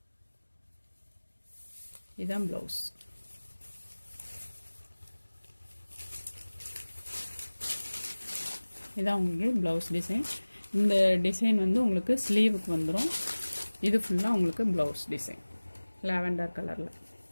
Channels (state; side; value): inverted; both; correlation -1.00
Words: இதுதான் ப்ளவுஸ். இதான் உங்களுக்கு ப்ளவுஸ் டிசைன். இந்த டிசைன் வந்து உங்களுக்கு ஸ்லீவுக்கு வந்துடும். இது ஃபுல்லாக உங்களுக்கு ப்ளவுஸ் டிசைன் லாவெண்டர் கலரில்.